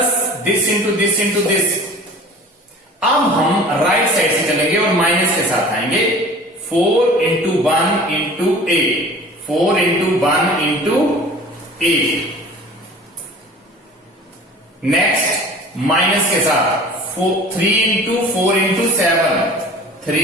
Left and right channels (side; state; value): both; normal; correlation 0.43